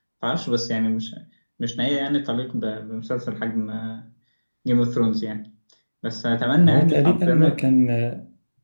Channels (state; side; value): inverted; both; correlation -1.00